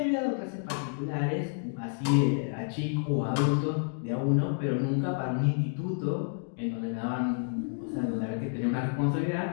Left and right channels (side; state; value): right; silent; 58 dB below the other